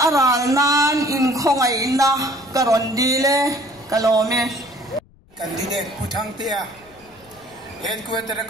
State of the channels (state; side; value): noise; left; rumble, 28 dB below the sound